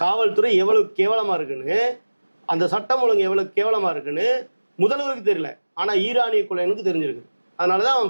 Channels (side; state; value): both; inverted; correlation -1.00